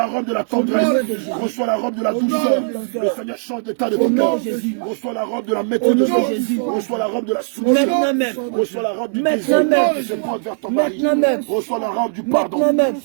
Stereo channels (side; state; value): left; silent; digital silence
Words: robe de la tendresse. Reçois la robe de la douceur. Le Seigneur change l'état de ton cœur. Reçois la robe de la maîtrise de soi. Reçois la robe de la soumission. Reçois la robe du désir qui se porte vers ton mari. Reçois la robe du pardon.